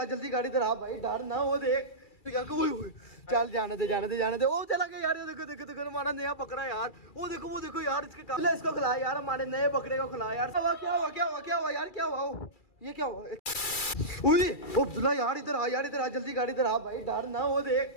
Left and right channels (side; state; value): right; late; 2.3 ms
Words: जल्दी गाड़ी इधर आ भाई, डर ना वो देख। चल जाने दे जाने दे जाने दे। ओ चला गया यार, ये देखो देखो देखो हमारा नया पकड़ा यार। वो देखो यार, इसके इसको खिला यार, हमारे नए बकरे को खिला यार। क्या हुआ क्या हुआ क्या हुआ क्या हुआ यार, क्या हुआ ये क्या हुआ? अब्दुल्ला यार इधर आ, यार इधर आ, जल्दी गाड़ी इधर आ भाई, डर ना वो